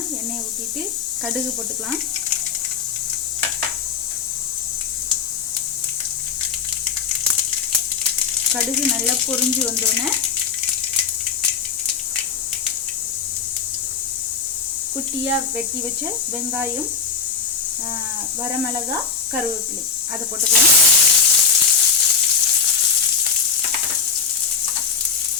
எண்ணெயை ஊற்றிட்டு கடுகு போட்டுக்கலாம். கடுகு நல்லா பொரிஞ்சு வந்தோடனே குட்டியாக வெட்டி வச்ச வெங்காயம், வரமிளகாய், கருவேப்பிலை அதை போட்டுக்கலாம்.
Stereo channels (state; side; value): quieter; right; 5.9 dB